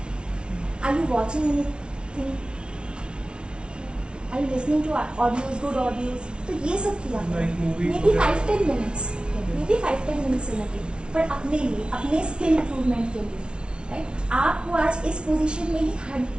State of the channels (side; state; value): left; late; 0.057 ms